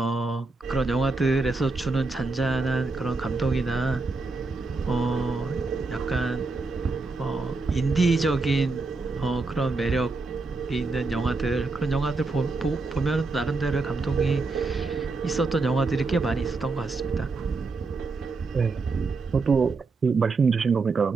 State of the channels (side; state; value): left; quieter; 3.8 dB